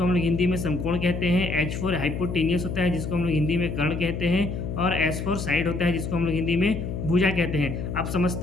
हम लोग हिंदी में समकोण कहते हैं, H4 हाइपोटेनियस होता है जिसको हम लोग हिंदी में कर्ण कहते हैं, और S4 साइड होता है जिसको हम लोग हिंदी में भुजा कहते हैं। अब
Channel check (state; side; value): noise; left; hum, 5 dB below the sound